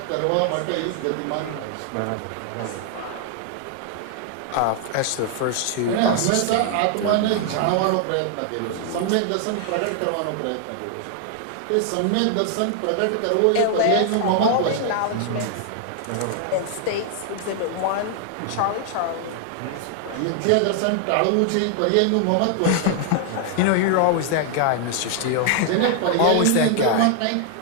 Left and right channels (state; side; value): different; both; correlation 0.00